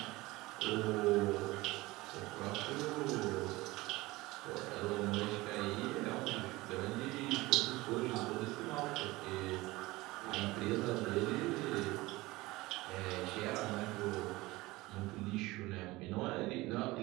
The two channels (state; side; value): quieter; left; 20.3 dB